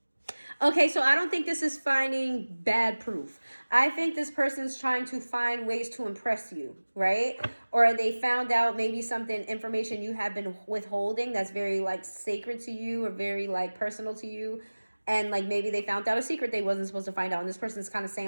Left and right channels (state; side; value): inverted; both; correlation -1.00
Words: Okay, so I don't think this is finding bad proof. I think this person's trying to find ways to impress you, right? Or they found out maybe something, information you have been withholding that's very like sacred to you or very like personal to you. And like maybe they found out a secret they wasn't supposed to find out. And this person's kind of